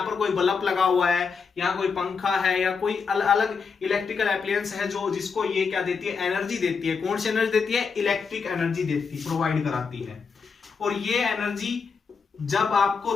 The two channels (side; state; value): right; quieter; 5.4 dB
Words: पर कोई बल्ब लगा हुआ है, यहाँ कोई पंखा है या कोई अलग इलेक्ट्रिकल एप्लायंस है जो जिसको ये क्या देती है, एनर्जी देती है। कौन सी एनर्जी देती है? इलेक्ट्रिक एनर्जी देती, प्रोवाइड कराती है। और ये एनर्जी जब